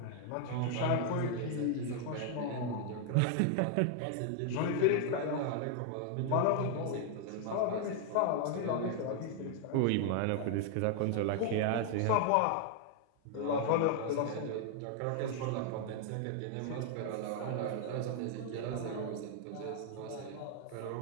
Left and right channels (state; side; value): different; both; correlation 0.00